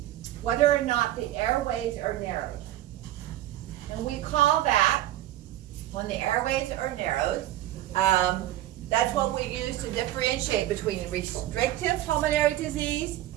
whether or not the airways are narrowed. And we call that, when the airways are narrowed, that's what we use to differentiate between restrictive pulmonary disease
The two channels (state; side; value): quieter; left; 14.2 dB